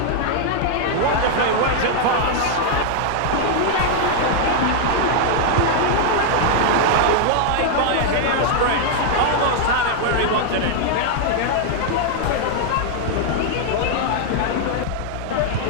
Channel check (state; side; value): different; both; correlation 0.00